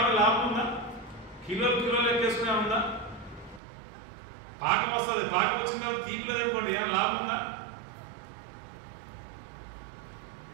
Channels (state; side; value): drops out; left; at 3.6 s